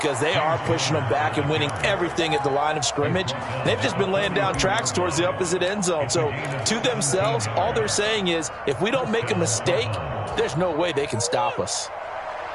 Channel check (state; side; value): identical; both; correlation 1.00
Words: they are pushing them back and winning everything at the line of scrimmage. They've just been laying down tracks towards the opposite end zone. So to themselves, all they're saying is, if we don't make a mistake, there's no way they can stop us.